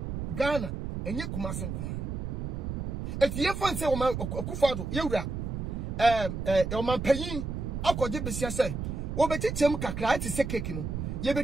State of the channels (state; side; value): noise; right; rumble, 4 dB below the sound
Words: Ghana enye kumase nkoa eti ye fanse o ma Akufo-Addo yewura o ma panyin akode besia se wo betichem kakra ati se cake no ye